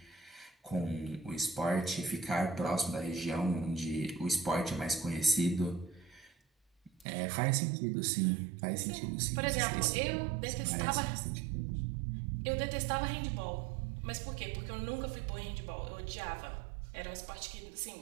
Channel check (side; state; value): left; drops out; at 7.1 s